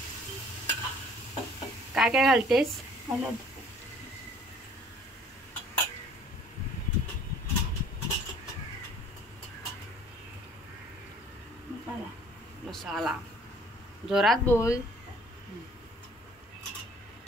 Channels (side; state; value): both; normal; correlation 0.55